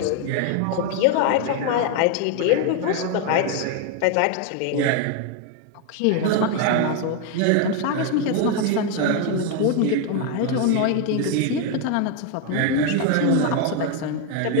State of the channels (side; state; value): both; different; correlation 0.01